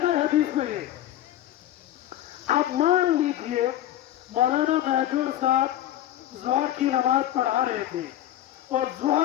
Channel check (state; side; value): quieter; right; 12.7 dB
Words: نا حدیث میں یہ. اب مان لیجئے مولانا مہجور صاحب ظہر کی نماز پڑھا رہے تھے اور